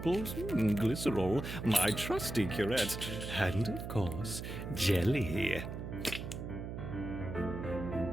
glycerol, my trusty curette, and, of course, jelly.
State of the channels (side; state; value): right; noise; hum, 7 dB below the sound